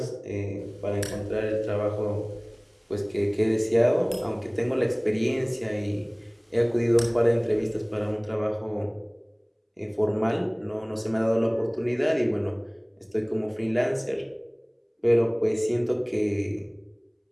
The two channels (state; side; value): identical; both; correlation 1.00